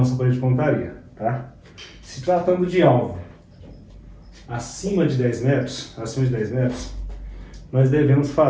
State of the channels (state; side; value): identical; both; correlation 1.00